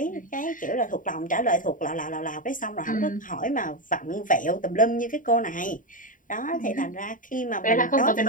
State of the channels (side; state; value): right; late; 0.39 ms